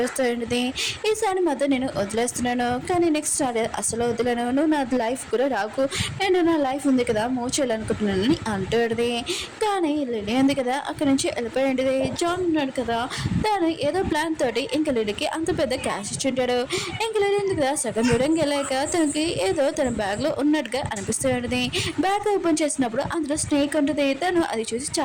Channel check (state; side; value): identical; both; correlation 1.00